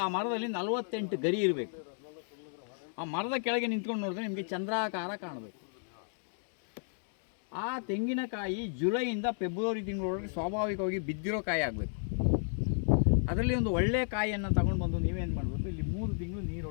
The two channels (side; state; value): right; silent; digital silence